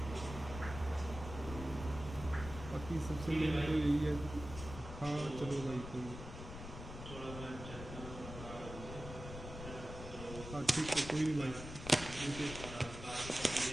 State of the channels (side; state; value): left; noise; rumble, 10 dB below the sound